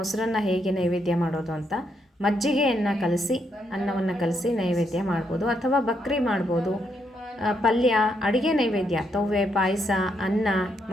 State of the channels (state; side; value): normal; both; correlation 0.77